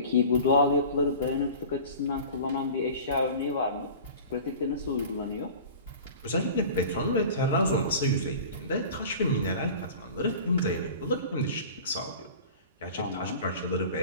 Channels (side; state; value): both; inverted; correlation -0.39